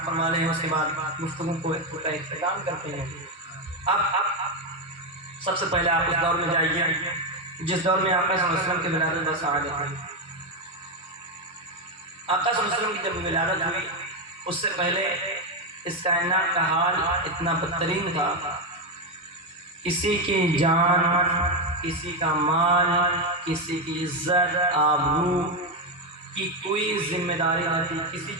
فرما لیں، اس کے بعد گفتگو کو اختتام کرتے ہیں۔ اب سب سے پہلے آپ اس دور میں جائیے جس دور میں آقا صلی اللہ علیہ وسلم کی ولادت بسعادت ہوئی۔ آقا صلی اللہ علیہ وسلم کی جب ولادت ہوئی اس سے پہلے اس کائنات کا حال اتنا بدترین تھا، کسی کی جان، کسی کا مال، کسی کی عزت آبرو کی کوئی ذمہ داری نہ تھی، کسی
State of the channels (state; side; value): normal; both; correlation 0.07